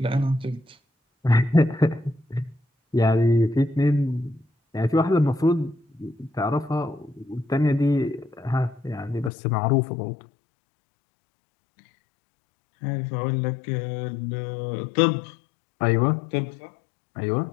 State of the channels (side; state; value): right; drops out; at 9.3 s